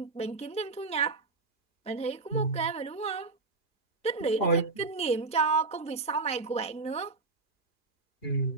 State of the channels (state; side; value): quieter; left; 3.9 dB